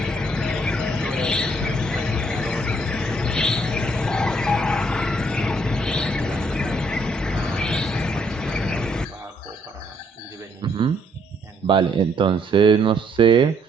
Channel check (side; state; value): both; normal; correlation 0.68